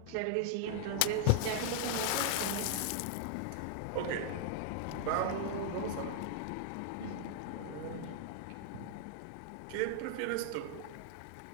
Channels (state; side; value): different; both; correlation -0.01